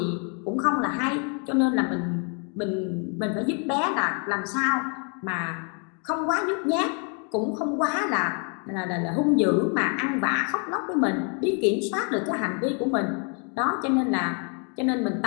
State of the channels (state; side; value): quieter; right; 38.5 dB